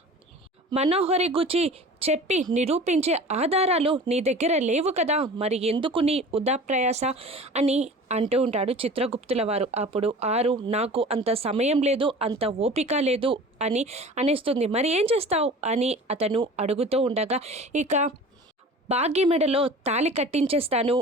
మనోహరి గురించి చెప్పి నిరూపించే ఆధారాలు నీ దగ్గర లేవు కదా, మరి ఎందుకు నీ వృధా ప్రయాస అని అంటూ ఉంటాడు చిత్రగుప్తుల వారు. అప్పుడు ఆరు, నాకు అంత సమయం లేదు, అంత ఓపిక లేదు అని అనేస్తుంది. మరి ఏం చేస్తావు అని అతను అడుగుతూ ఉండగా, ఇక భాగ్య మెడలో తాళి కట్టించేస్తాను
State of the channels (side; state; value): both; normal; correlation 0.40